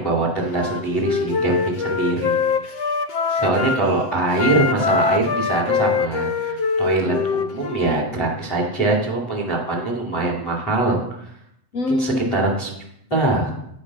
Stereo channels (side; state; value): right; late; 7.8 ms